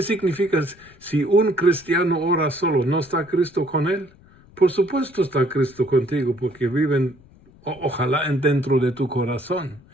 significa si un cristiano ora solo? ¿No está Cristo con él? Por supuesto está Cristo contigo, porque viven, ojalá, dentro de tu corazón.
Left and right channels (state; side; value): noise; left; rumble, 27 dB below the sound